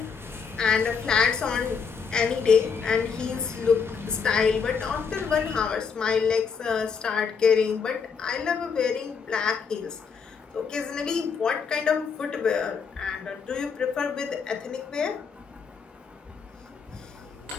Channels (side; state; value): right; quieter; 5.9 dB